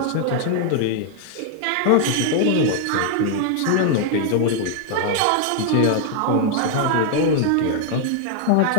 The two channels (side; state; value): both; different; correlation 0.00